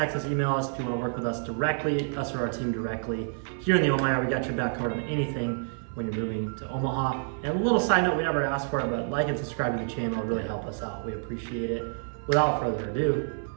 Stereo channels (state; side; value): silent; left; 56 dB below the other